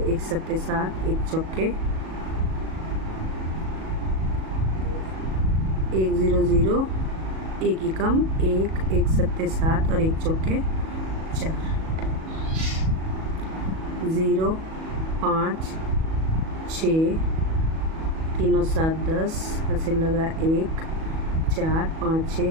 1 सत्ते 7, 1 चौके 1 0 0, 1 एकम 1, 1 सत्ते 7 और 1 चौके 4, 0 5 6, 3 और 7 10, हासिल लगा 1 4 5 6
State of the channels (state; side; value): late; left; 37 ms